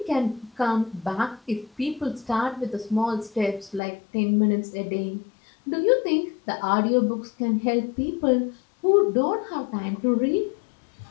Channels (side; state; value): right; drops out; at 3.8 s